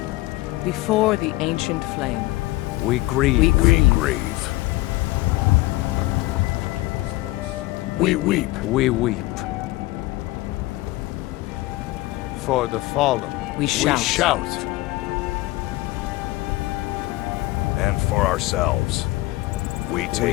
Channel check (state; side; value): quieter; right; 19.4 dB